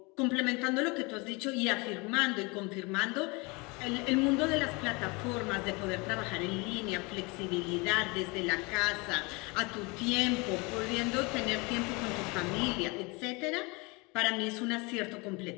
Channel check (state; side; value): quieter; right; 27.3 dB